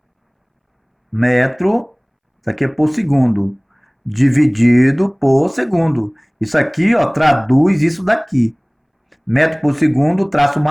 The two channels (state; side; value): identical; both; correlation 1.00